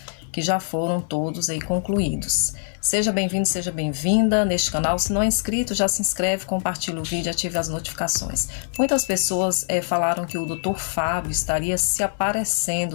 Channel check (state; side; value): silent; right; 58 dB below the other